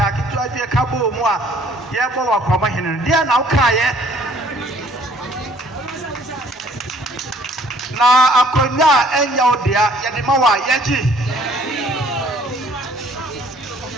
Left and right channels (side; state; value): both; normal; correlation 0.58